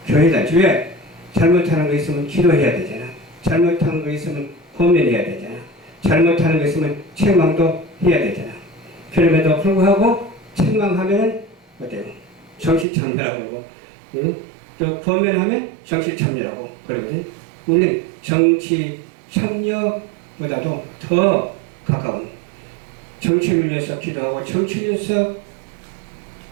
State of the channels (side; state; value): left; drops out; at 12.9 s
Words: 교회 단체. 왜? 잘못하는 거 있으면 기도해야 되잖아. 잘못하는 거 있으면 고민해야 되잖아. 잘못하는 거 있으면 책망도 해야 되잖아. 그럼에도 불구하고 책망하면 어때요? 정치참여라고 그러고 또 권면하면 정치참여라고 그러거든. 우리는 정치 참여보다도 더 가까운 정치를 위해서 기도하고 정치를 위해서